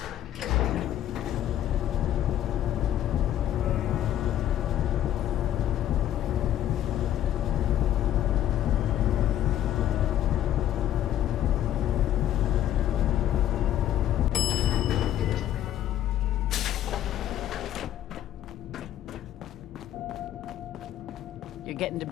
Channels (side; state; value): right; quieter; 11.8 dB